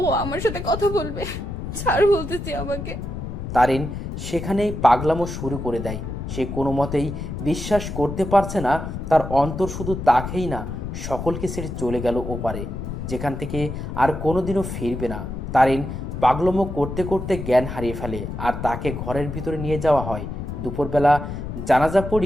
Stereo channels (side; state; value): left; noise; rumble, 6 dB below the sound